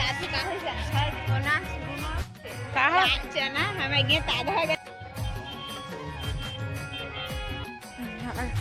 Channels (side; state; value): both; identical; correlation 1.00